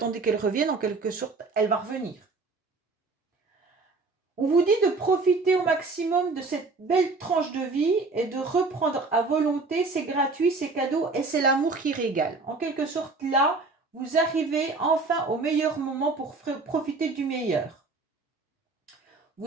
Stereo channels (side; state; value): left; quieter; 3.8 dB